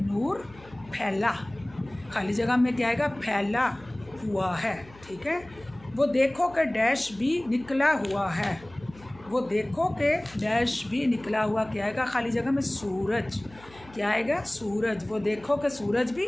फैला। खाली जगह में क्या आएगा? फैला हुआ है, ठीक है। वो देखो कि डैश भी निकला हुआ है, वो देखो कि डैश भी निकला हुआ। क्या आएगा? खाली जगह में सूरज। क्या आएगा? सूरज। वो देखो कि सूरज भी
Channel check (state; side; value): noise; left; hum, 23 dB below the sound